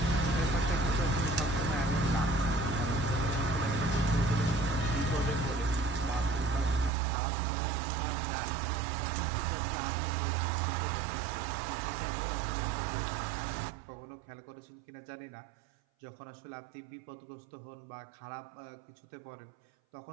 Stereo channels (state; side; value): drops out; left; at 6.9 s